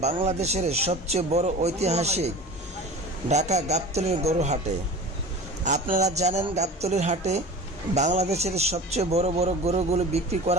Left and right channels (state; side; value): normal; both; correlation 0.36